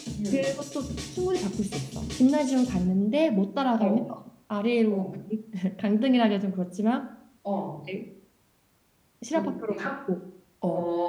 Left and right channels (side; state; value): both; identical; correlation 1.00